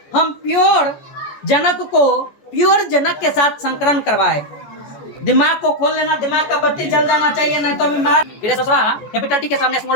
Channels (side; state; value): right; late; 14 ms